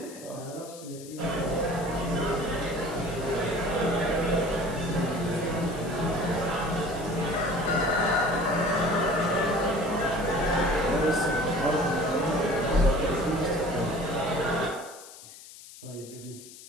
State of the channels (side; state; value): left; noise; hiss, 17 dB below the sound